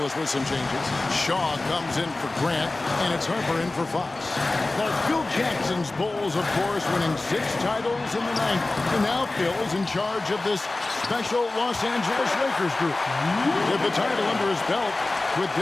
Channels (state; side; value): quieter; right; 3.1 dB